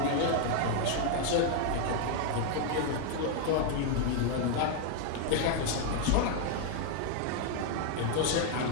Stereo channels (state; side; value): different; both; correlation 0.00